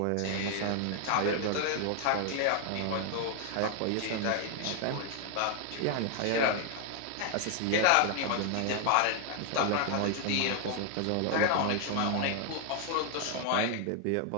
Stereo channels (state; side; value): different; both; correlation 0.00